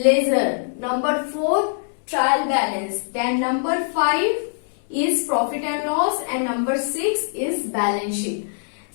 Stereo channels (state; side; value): silent; right; digital silence